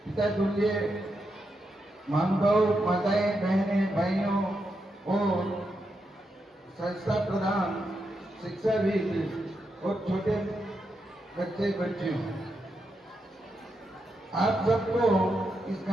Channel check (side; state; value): both; normal; correlation 0.84